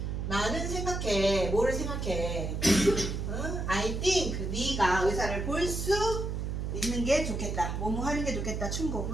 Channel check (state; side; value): noise; right; hum, 3 dB below the sound